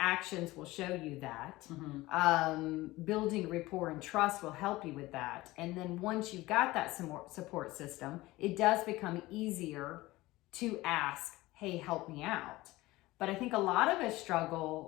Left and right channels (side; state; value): right; quieter; 19.1 dB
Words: will show you that. Building rapport and trust will help you with that. And then once you've got that support system, it does become easier to ask, hey, help me out. But I think a lot of us